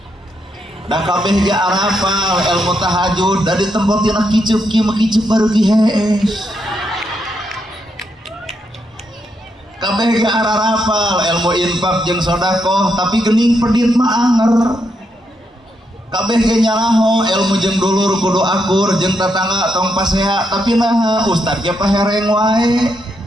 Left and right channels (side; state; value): both; normal; correlation 0.80